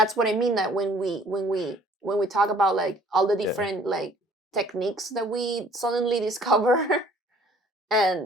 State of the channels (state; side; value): normal; both; correlation 0.56